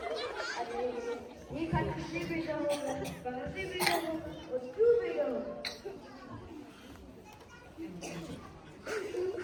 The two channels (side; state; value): both; identical; correlation 1.00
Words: अरे ये खत किसने भेजा हो, कहाँ से भेजा हो और क्यों भेजा हो?